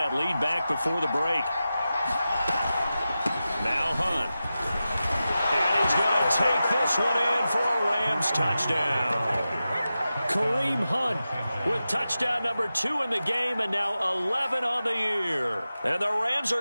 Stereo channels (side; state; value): both; inverted; correlation -0.93